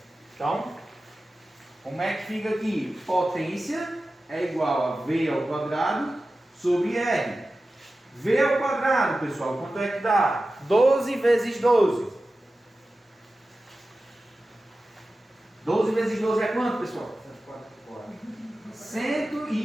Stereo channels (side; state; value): both; normal; correlation 0.95